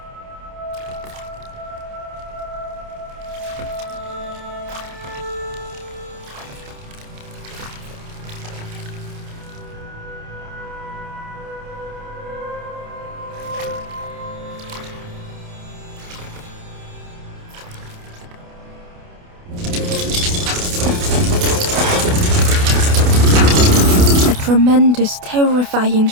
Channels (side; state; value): left; late; 28 ms